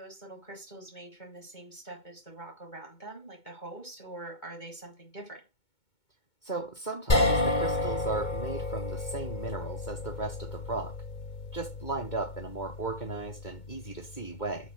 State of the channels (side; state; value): right; late; 2.2 ms